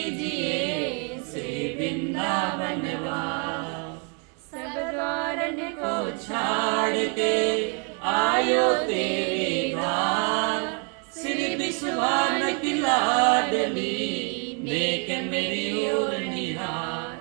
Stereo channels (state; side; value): quieter; left; 36.4 dB